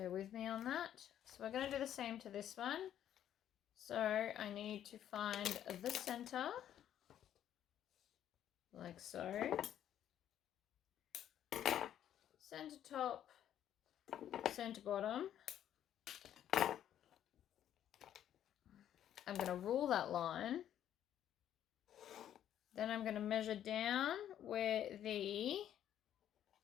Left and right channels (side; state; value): right; quieter; 10.7 dB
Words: with me on that. So we're going to do the same to this one. So I need to find the center, like so. Center top, center bottom. I'm going to rule that line. Then I'm going to measure down where the,